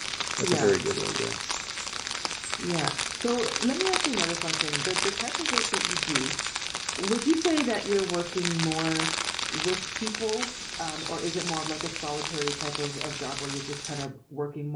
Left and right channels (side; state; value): both; identical; correlation 1.00